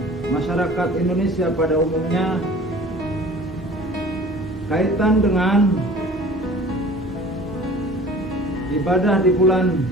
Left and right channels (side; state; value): both; normal; correlation 0.45